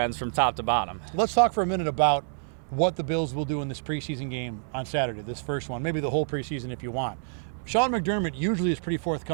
from top to bottom. Let's talk for a minute about what the Bills will do in this preseason game on Saturday, this first one, maybe the whole preseason if you want. Sean McDermott usually is pretty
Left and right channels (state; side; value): silent; left; 60 dB below the other